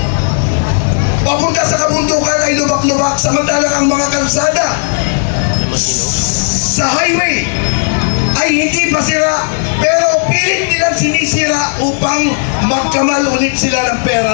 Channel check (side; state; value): right; silent; digital silence